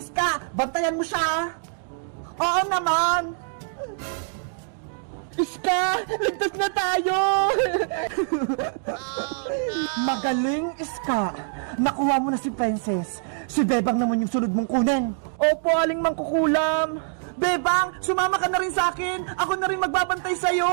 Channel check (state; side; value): silent; left; digital silence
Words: Bantayan mo siya. Oo naman. Iska, ligtas na tayo! Magaling, Iska. Nakuha mo na si Princess. Si Bebang naman yung sunod mong kunin. Opo, Aling Mangkukulam. Bebang, sumama ka na rin sa akin. Ako na rin magbabantay